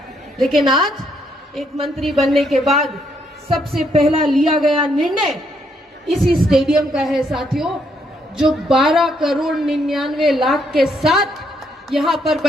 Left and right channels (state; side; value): normal; both; correlation 0.73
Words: लेकिन आज एक मंत्री बनने के बाद सबसे पहला लिया गया निर्णय इसी स्टेडियम का है साथियों, जो 12 करोड़ 99 लाख के साथ यहाँ पर